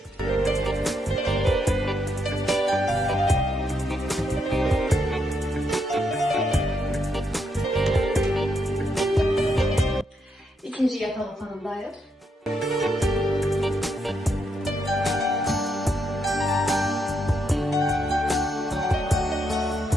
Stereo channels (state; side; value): normal; both; correlation 0.78